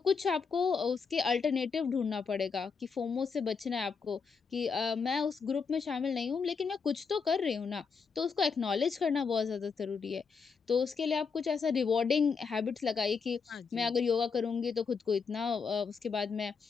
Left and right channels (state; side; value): quieter; right; 5.4 dB